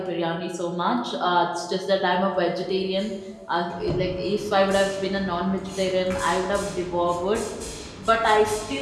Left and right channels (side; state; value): both; identical; correlation 1.00